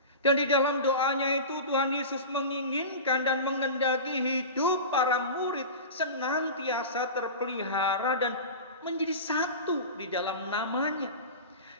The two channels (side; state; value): both; inverted; correlation -0.30